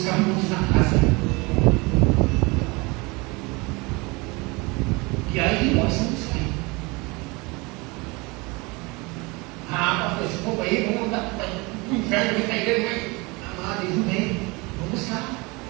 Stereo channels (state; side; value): quieter; left; 26.1 dB